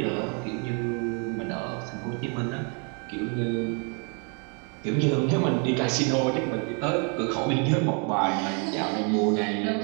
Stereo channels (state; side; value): quieter; left; 37.8 dB